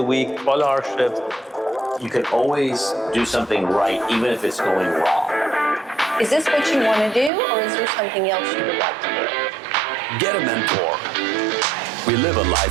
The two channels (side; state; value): left; drops out; at 7.3 s